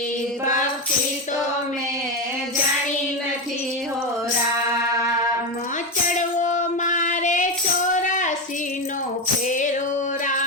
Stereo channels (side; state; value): both; normal; correlation 0.12